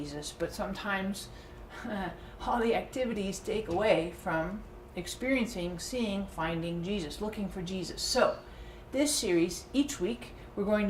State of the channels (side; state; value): both; identical; correlation 1.00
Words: but sometimes all the activities take away from experiencing, seeing, finding Jesus, looking for Jesus. So this series, each week, we're going